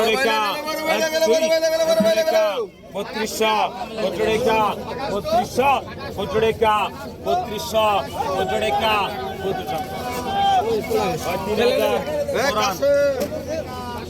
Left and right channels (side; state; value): both; identical; correlation 1.00